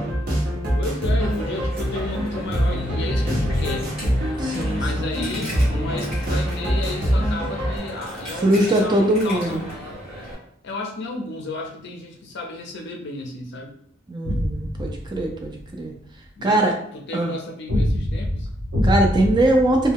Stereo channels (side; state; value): both; normal; correlation 0.74